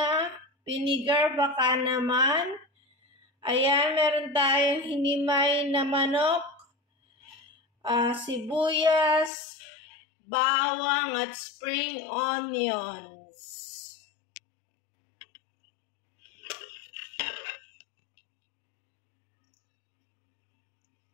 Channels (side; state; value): right; drops out; at 9.3 s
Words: vinegar baka naman. Ayan, meron tayong hinimay na manok, sibuyas, bawang at spring onions.